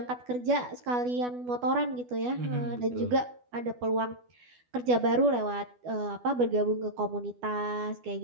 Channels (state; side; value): late; left; 12 ms